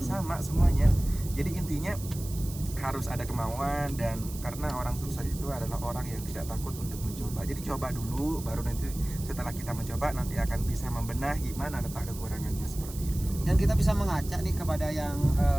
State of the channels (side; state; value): right; noise; hiss, 14 dB below the sound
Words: sama semuanya. Jadi intinya harus ada kemauan, dan karena orang sukses itu adalah orang yang tidak takut untuk mencoba. Jadi coba dulu, baru nanti setelah kita mencoba nanti akan bisa membenahi mana letak kekurangannya, seperti itu. Dan kita bisa mengajak nih kepada yang